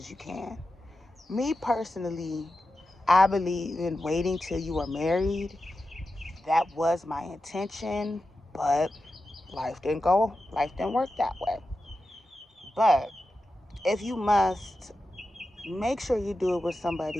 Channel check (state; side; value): normal; both; correlation 0.91